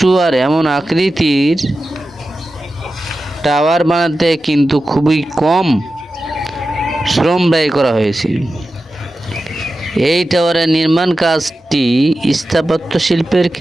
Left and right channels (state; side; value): normal; both; correlation 0.93